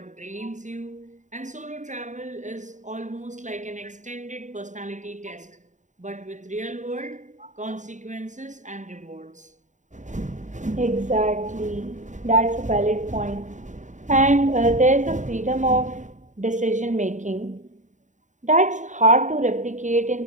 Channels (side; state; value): left; late; 0.36 ms